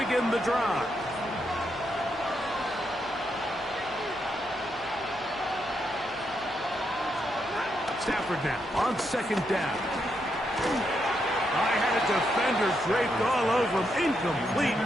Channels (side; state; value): right; noise; hum, 24 dB below the sound